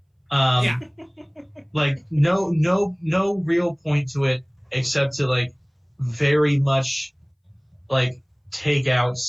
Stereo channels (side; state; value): both; identical; correlation 1.00